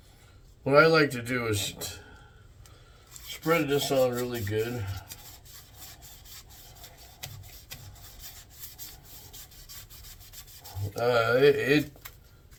what I like to do is spread this on really good.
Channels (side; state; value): both; identical; correlation 1.00